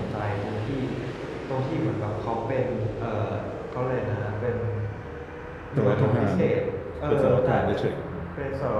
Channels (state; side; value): identical; both; correlation 1.00